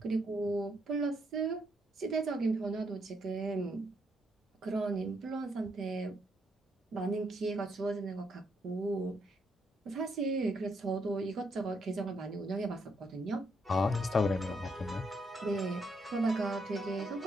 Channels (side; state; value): both; normal; correlation 0.76